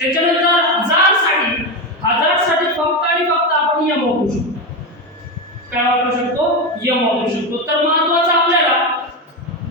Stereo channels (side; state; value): both; normal; correlation 0.14